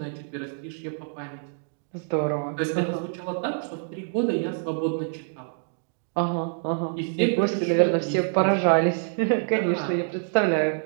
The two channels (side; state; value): left; silent; digital silence